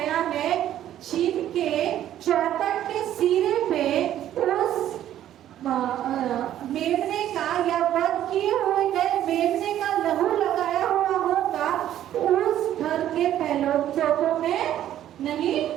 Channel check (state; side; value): quieter; left; 11.8 dB